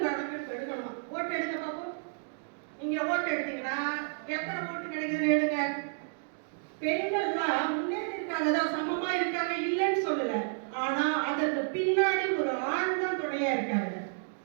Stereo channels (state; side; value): silent; left; digital silence